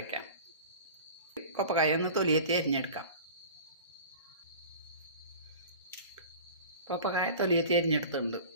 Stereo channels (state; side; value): inverted; both; correlation -0.39